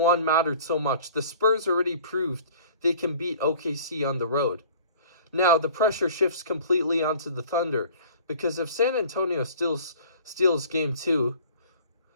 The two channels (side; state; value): both; inverted; correlation -0.48